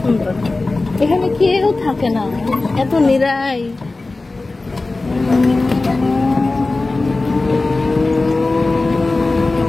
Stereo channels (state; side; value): quieter; right; 3.3 dB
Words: এখানে কেউ থাকে না, এত নিরাই।